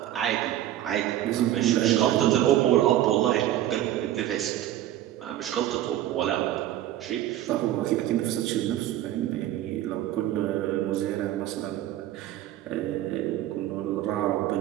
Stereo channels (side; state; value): left; quieter; 13.0 dB